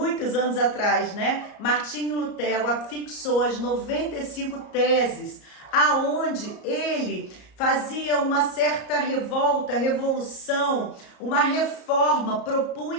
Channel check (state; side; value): late; right; 34 ms